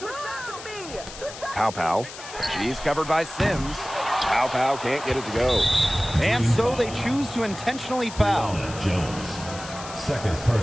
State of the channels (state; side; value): noise; left; hiss, 13 dB below the sound